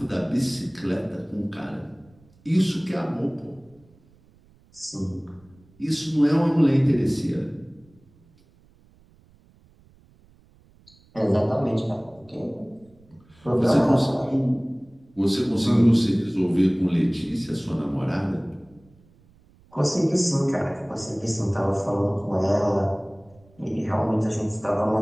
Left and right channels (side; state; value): right; noise; rumble, 30 dB below the sound